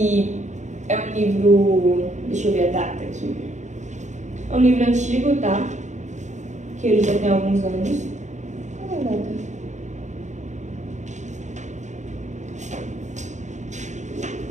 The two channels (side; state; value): left; late; 0.34 ms